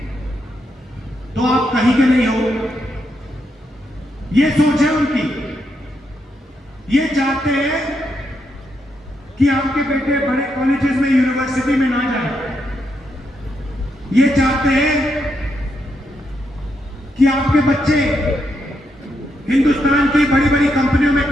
तो आप कहीं के नहीं हो। ये सोच है उनकी। ये चाहते हैं कि आपके बेटे बड़े कॉलेजेस में, यूनिवर्सिटी में ना जाए। ये चाहते हैं कि आपके बच्चे हिंदुस्तान की बड़ी बड़ी कंपनियों में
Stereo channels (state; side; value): normal; both; correlation 0.80